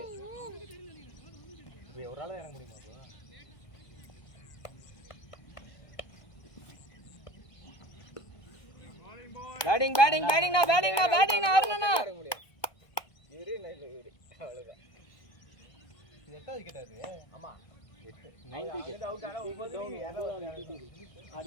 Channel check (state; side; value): late; right; 1.2 ms